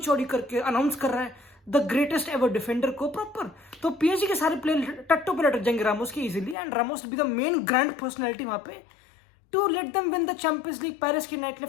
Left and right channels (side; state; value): right; drops out; at 6.6 s